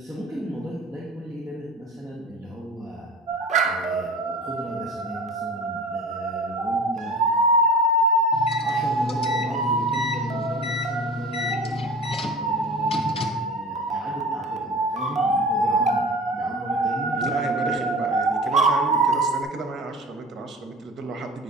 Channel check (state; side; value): normal; both; correlation 0.37